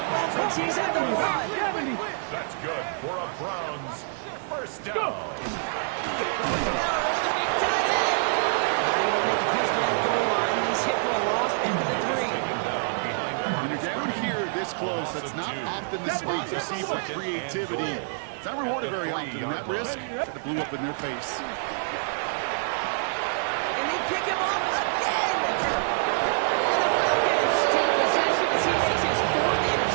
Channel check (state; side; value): silent; left; digital silence